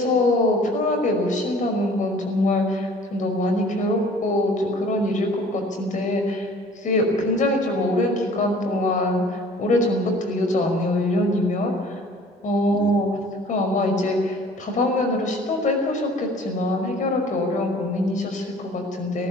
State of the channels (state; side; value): normal; both; correlation 0.50